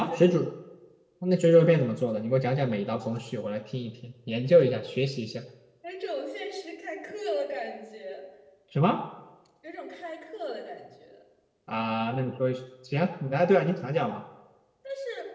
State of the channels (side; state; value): both; identical; correlation 1.00